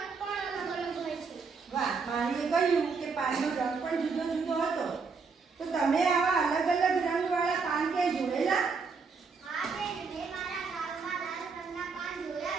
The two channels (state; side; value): quieter; left; 5.0 dB